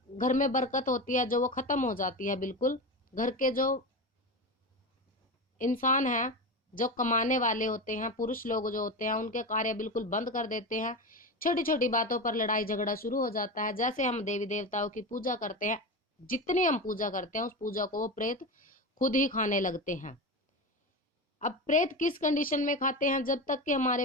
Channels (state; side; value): normal; both; correlation 0.22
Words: घर में बरकत होती है जो वो खत्म हो जाती है बिल्कुल। घर के जो इंसान हैं, जो कमाने वाले होते हैं, पुरुष लोग जो होते हैं, उनके कार्य बिल्कुल बंद कर देते हैं। छोटी छोटी बातों पर लड़ाई झगड़ा शुरू हो जाता है। जैसे हम देवी देवताओं की पूजा करते हैं, जितनी हम पूजा करते हैं उस पूजा को वो प्रेत खुद ही खाने लगते हैं। अब प्रेत किस कंडीशन में खाते हैं, जब तक कि हमारे